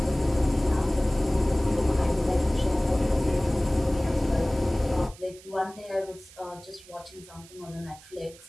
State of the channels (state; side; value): noise; right; hiss, 22 dB below the sound